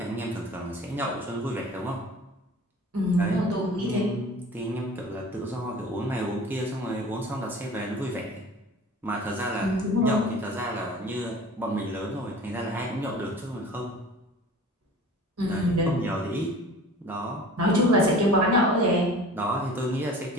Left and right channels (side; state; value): both; normal; correlation 0.42